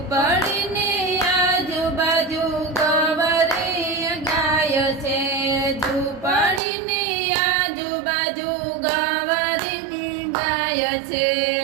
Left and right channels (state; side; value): drops out; left; at 6.6 s